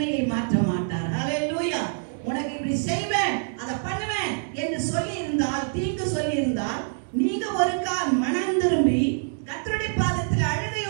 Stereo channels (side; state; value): left; silent; digital silence